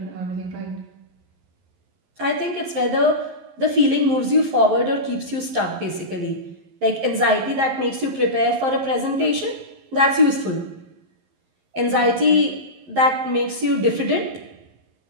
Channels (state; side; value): late; left; 11 ms